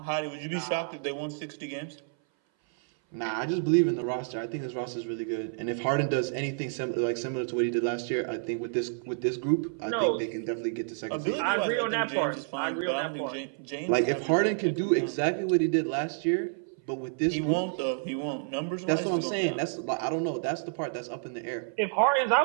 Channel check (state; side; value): silent; left; 57 dB below the other